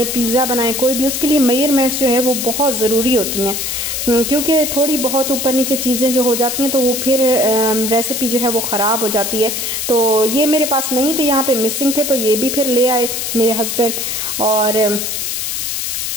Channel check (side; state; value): left; noise; hiss, 2 dB below the sound